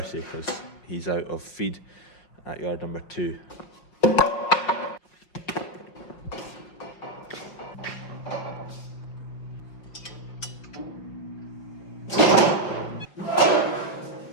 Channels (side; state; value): right; late; 5.3 ms